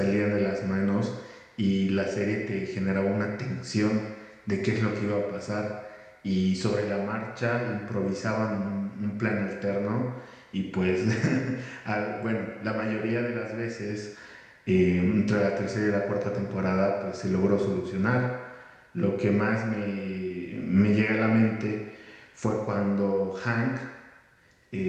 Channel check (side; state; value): both; identical; correlation 1.00